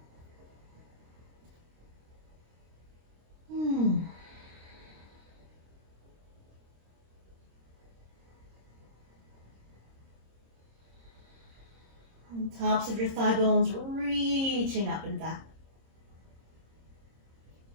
Tops of your thigh bones reaching up and back.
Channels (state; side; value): late; left; 26 ms